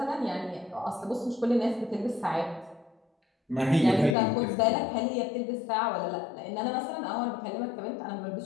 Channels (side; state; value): right; drops out; at 4.2 s